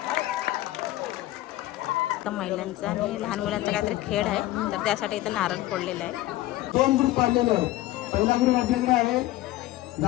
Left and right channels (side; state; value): right; quieter; 16.4 dB